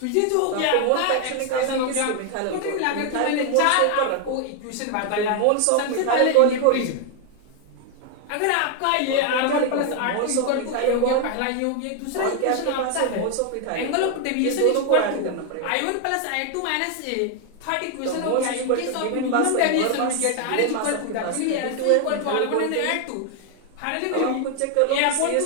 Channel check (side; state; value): both; different; correlation 0.00